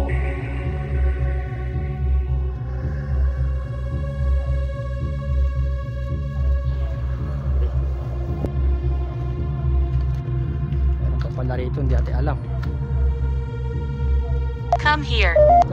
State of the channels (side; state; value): both; identical; correlation 1.00